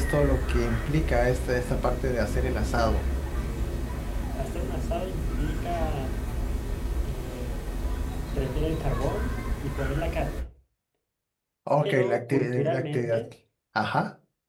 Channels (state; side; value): identical; both; correlation 1.00